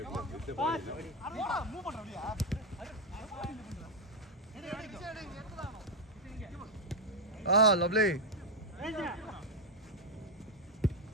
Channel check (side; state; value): both; normal; correlation 0.04